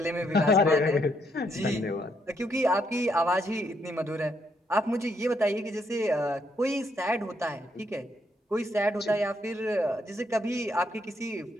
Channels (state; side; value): normal; both; correlation 0.74